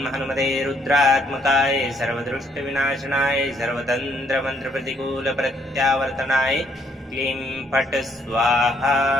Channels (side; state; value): both; normal; correlation 0.68